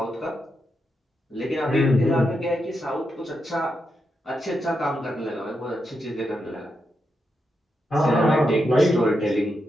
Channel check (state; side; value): normal; both; correlation 0.84